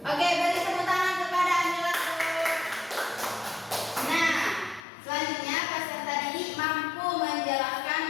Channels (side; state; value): right; drops out; at 4.9 s